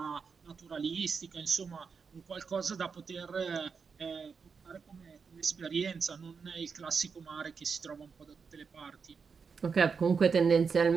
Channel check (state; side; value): quieter; left; 5.6 dB